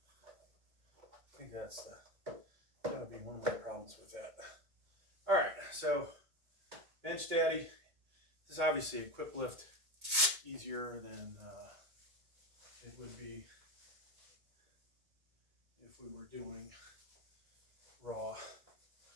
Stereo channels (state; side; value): late; left; 2.2 ms